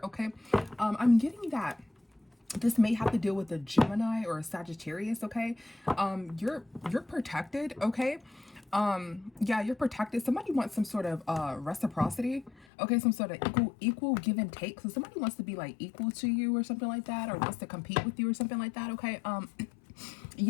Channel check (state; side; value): drops out; right; at 12.7 s